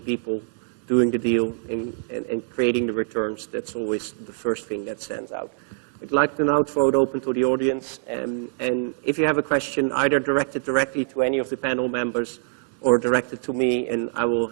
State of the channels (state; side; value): silent; left; digital silence